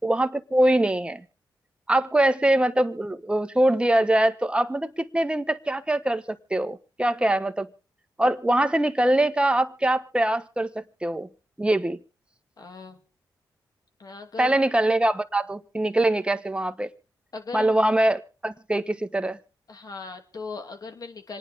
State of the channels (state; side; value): normal; both; correlation 0.93